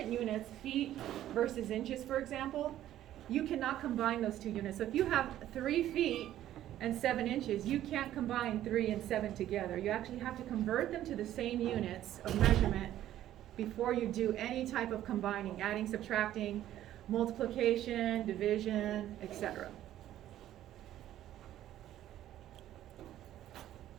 units, feet versus inches, for example, you cannot combine those two units. So if you have 3 feet and 7 inches, you can't combine 3 and 7 together. You actually have to convert them to the same units of measurement before you do any type of combining, adding, subtracting, multiplication, division, etc.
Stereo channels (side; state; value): left; quieter; 12.6 dB